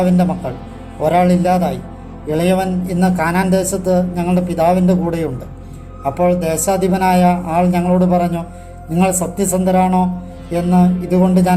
മക്കൾ. ഒരാളില്ലാതായി. ഇളയവൻ ഇന്ന് കാനാൻ ദേശത്ത് ഞങ്ങളുടെ പിതാവിൻ്റെ കൂടെയുണ്ട്. അപ്പോൾ ദേശാധിപനായ ആൾ ഞങ്ങളോട് പറഞ്ഞു, നിങ്ങൾ സത്യസന്ധരാണോ എന്ന് ഇതുകൊണ്ട്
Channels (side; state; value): both; identical; correlation 1.00